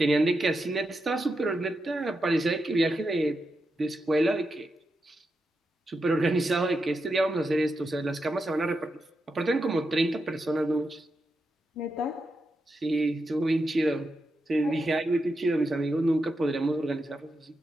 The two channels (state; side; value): normal; both; correlation 0.87